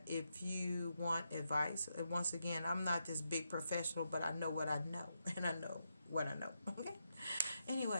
if you want advice. Once again, I'm not this big professional, but I know what I know. And I know what I know. Okay?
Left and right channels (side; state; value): both; inverted; correlation -0.84